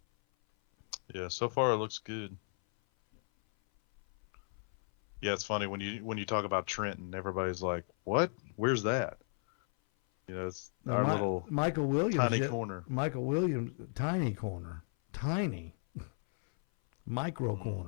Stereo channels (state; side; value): silent; right; 55 dB below the other